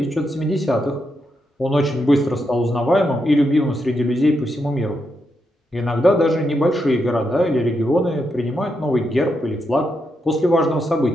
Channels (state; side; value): normal; both; correlation 0.83